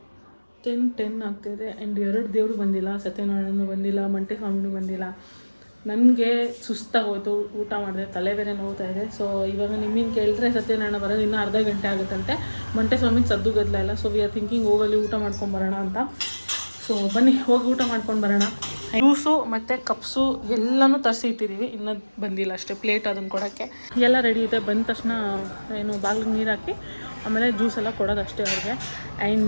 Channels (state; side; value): inverted; both; correlation -1.00